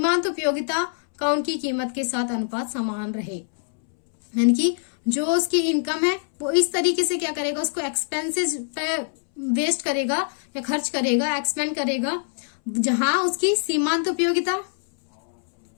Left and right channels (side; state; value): right; silent; 63 dB below the other